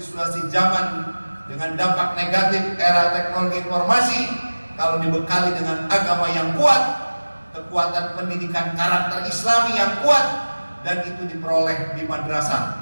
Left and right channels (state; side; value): inverted; both; correlation -1.00